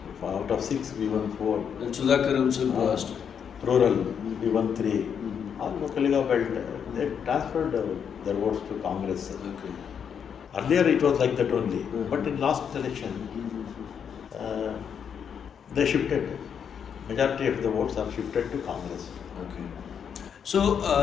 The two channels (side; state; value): right; quieter; 7.6 dB